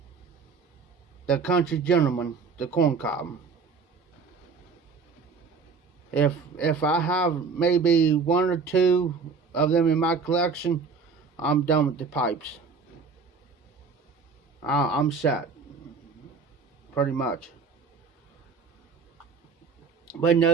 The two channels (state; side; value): quieter; left; 5.1 dB